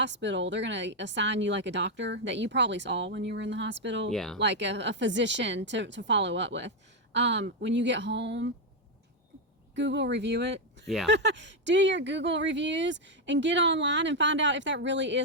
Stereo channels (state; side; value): normal; both; correlation 0.03